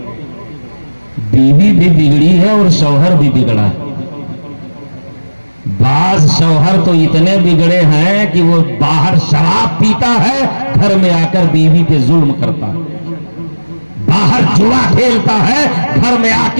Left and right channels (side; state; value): both; inverted; correlation -1.00